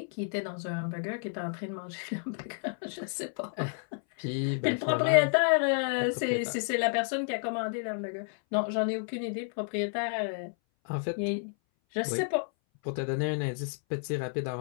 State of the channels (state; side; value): silent; right; 57 dB below the other